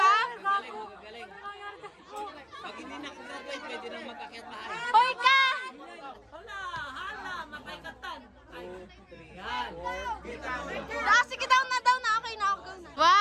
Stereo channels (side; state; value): both; identical; correlation 1.00